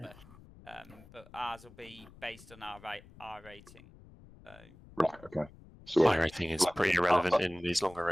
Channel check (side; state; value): left; noise; rumble, 22 dB below the sound